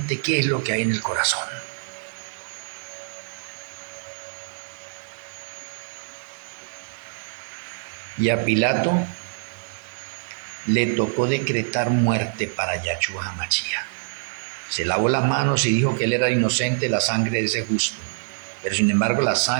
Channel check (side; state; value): left; silent; digital silence